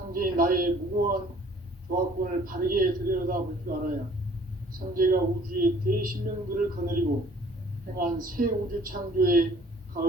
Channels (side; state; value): both; normal; correlation 0.55